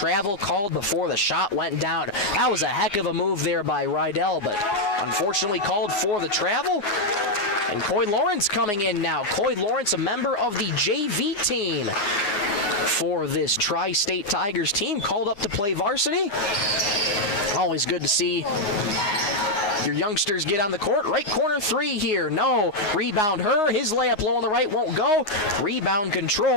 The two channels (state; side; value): late; right; 9.6 ms